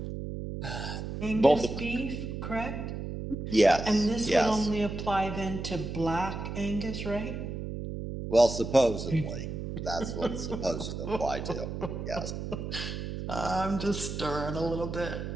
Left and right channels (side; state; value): right; noise; hum, 6 dB below the sound